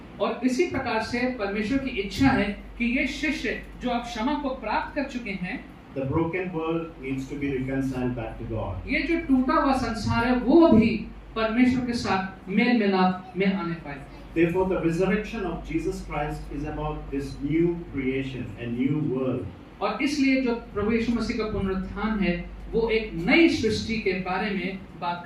और इसी प्रकार से परमेश्वर की इच्छा है कि ये शिष्य जो अब क्षमा को प्राप्त कर चुके हैं, the broken world needs to be reconciled back to God. ये जो टूटा हुआ संसार है वो भी परमेश्वर के साथ मेल मिलाप में आने पाए। Therefore, the resurrection of Jesus Christ is about this new creation, a new world. और इसलिए जो प्रभु यीशु मसीह का पुनरुत्थान है वो एक नई सृष्टि के बारे में बात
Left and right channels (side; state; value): both; identical; correlation 1.00